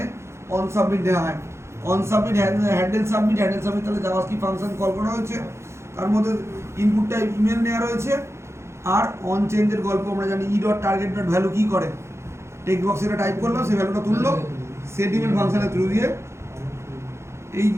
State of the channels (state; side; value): late; left; 0.13 ms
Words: অন সাবমিট দেওয়া হয়। অন সাবমিট, হ্যান্ডেল সাবমিট, তাহলে জাভাস্ক্রিপ্ট ফাংশন কল করা হয়েছে, তার মধ্যে ইনপুটটা ইমেল নেওয়া রয়েছে। আর অন চেঞ্জের গল্প আমরা জানি, e.target.value কি করে, টেক্সট বক্সে এটা টাইপ করলাম, সেই ভ্যালুটা তুললো, সেট ইমেল ফাংশনের থ্রু দিয়ে।